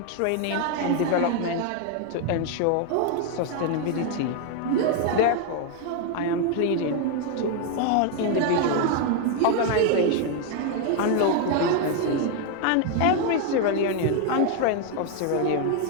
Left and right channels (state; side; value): different; both; correlation 0.00